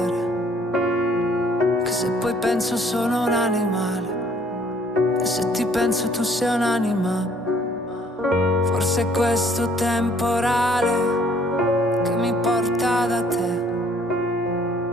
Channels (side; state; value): both; normal; correlation 0.61